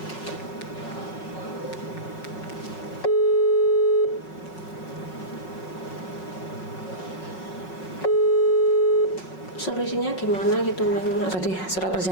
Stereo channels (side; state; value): right; late; 5.4 ms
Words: Solusinya gimana gitu Mas? Tadi surat